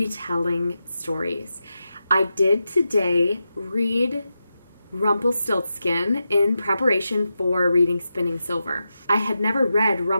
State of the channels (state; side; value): inverted; both; correlation -0.89